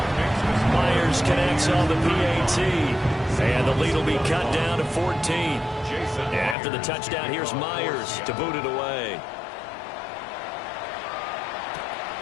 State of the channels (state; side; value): drops out; right; at 6.6 s